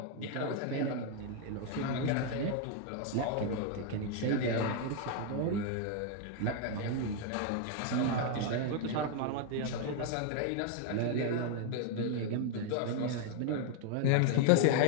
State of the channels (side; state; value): both; different; correlation 0.00